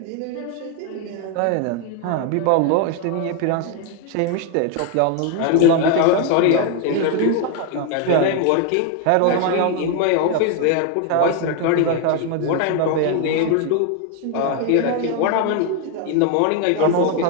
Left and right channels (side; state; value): both; different; correlation 0.01